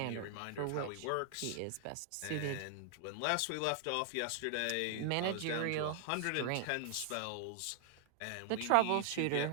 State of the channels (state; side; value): different; both; correlation 0.00